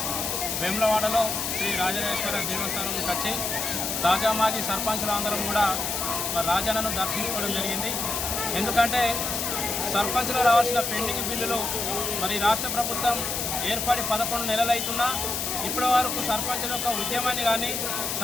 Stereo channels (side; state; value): left; noise; hiss, 1 dB below the sound